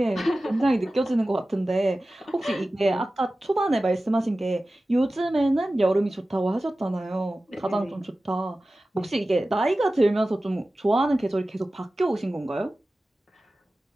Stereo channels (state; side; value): normal; both; correlation 0.96